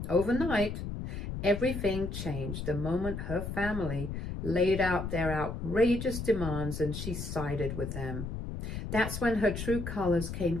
overnight, everything changed the moment her family laid out their outrageous demands and she sided with them. That's when her true colors came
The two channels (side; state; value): left; noise; rumble, 5 dB below the sound